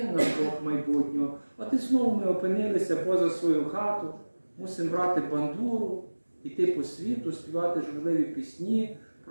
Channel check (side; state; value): both; inverted; correlation -1.00